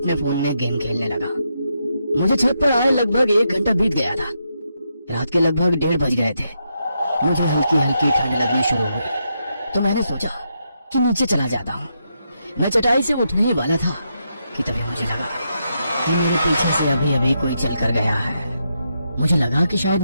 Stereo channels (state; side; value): inverted; both; correlation -0.82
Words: फोन में गेम खेलने लगा। मुझे छत पर आए लगभग 1 घंटा बीत गया था। रात के लगभग 1:30 बज गए थे। मुझे हल्की हल्की ठंड लगनी शुरू हुई तो मैंने सोचा कि नीचे चला जाता हूँ। मैं चटाई से उठने ही वाला था कि तभी मुझे लगा कि मेरे पीछे से अभी अभी कोई चल कर गया है। मुझे लगा कि शायद